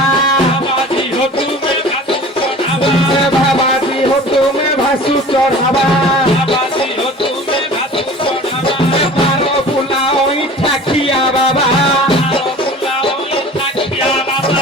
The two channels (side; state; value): both; normal; correlation 0.42